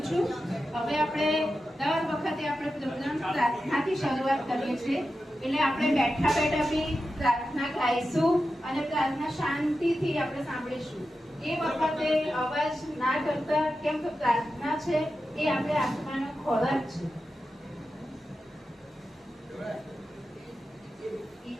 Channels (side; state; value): both; normal; correlation 0.91